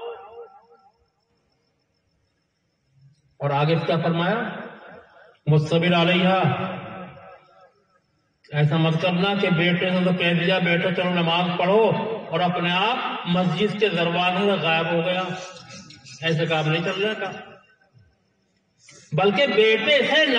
اور آگے کیا فرمایا؟ مصبر علیہ، ایسا مت کرنا کہ بیٹے نے تو کہہ دیا بیٹا چلو نماز پڑھو اور اپنے آپ مسجد کے دروازے سے غائب ہو گیا، ایسے کام نہیں چلنے کا، بلکہ بیٹے سے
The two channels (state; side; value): identical; both; correlation 1.00